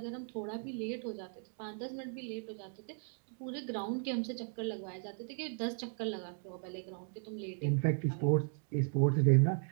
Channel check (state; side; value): silent; left; 53 dB below the other